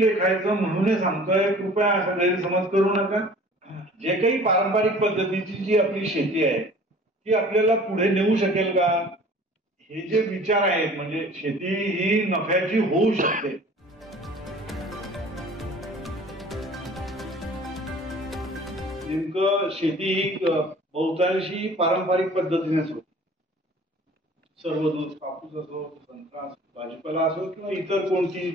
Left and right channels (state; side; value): normal; both; correlation 0.47